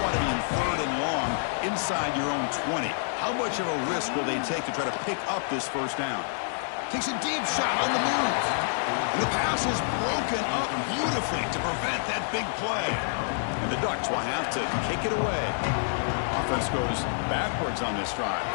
to be in third and long inside your own 20. How much of a risk will they take to try to pick up this first down? Takes a deep shot on the move. And the pass is broken up beautifully to prevent that big play. And the Ducks will have to kick it away. Offense goes backwards on this drive.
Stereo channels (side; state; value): right; silent; digital silence